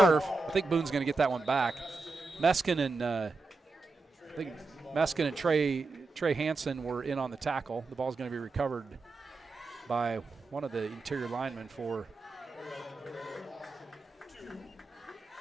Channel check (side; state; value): left; quieter; 3.7 dB